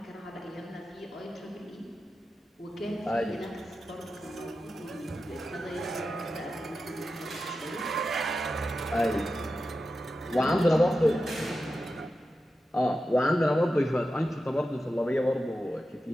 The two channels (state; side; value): normal; both; correlation 0.91